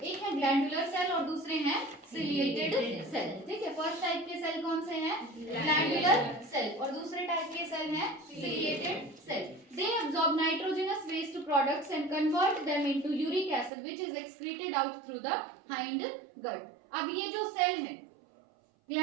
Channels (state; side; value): drops out; left; at 13.7 s